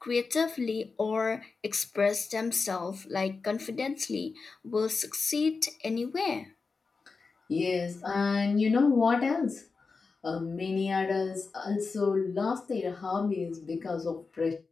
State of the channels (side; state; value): right; quieter; 4.5 dB